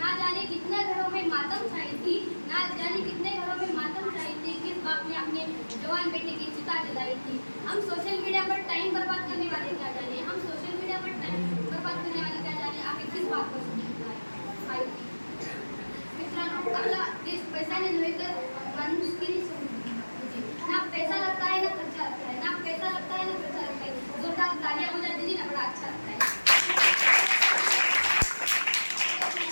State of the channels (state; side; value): inverted; both; correlation -1.00